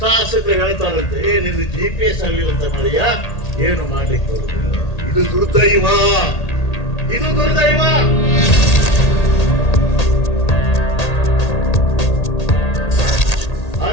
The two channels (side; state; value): right; late; 1.8 ms